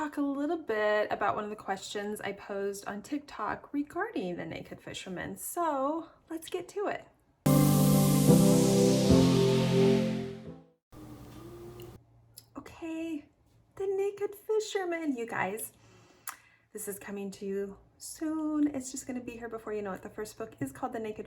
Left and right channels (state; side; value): identical; both; correlation 1.00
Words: a little bit about one of the questions I posed on TikTok regarding The Naked Fisherman. So let's get to it. Okay, The Naked Fisherman, you guys. This is coming to you soon. It's just going to be here before you know it. The first book is called The Naked